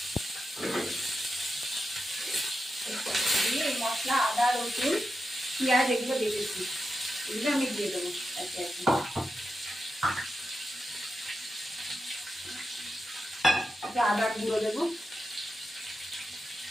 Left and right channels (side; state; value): both; normal; correlation 0.89